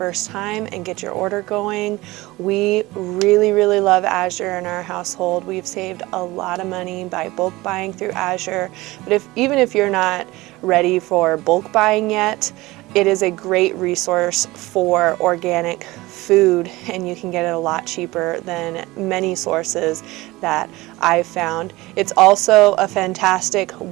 time and get your order going. We really love Azure in our household. We've saved a lot of money by bulk buying through Azure. But even if you're not ready for bulk buying yet, it is a great resource for organic food, and you can get it a lot cheaper than many sources that I've found. It's also a fantastic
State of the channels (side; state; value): left; quieter; 20.0 dB